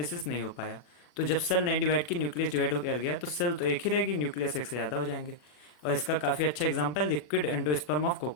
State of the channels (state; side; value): late; right; 40 ms